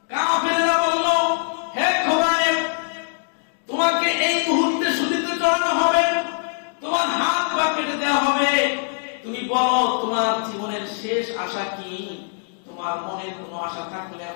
কাফেররা বলল, হে খোবাইব, তোমাকে এই মুহূর্তে শুলিতে চড়ানো হবে, তোমার হাত পা কেটে দেওয়া হবে। তুমি বলো তোমার জীবনের শেষ আশা কি? তোমার মনে কোনো আশা থাকলে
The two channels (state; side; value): silent; right; digital silence